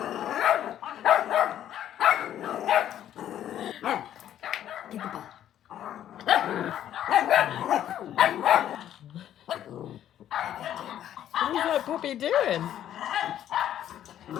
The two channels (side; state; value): right; quieter; 11.1 dB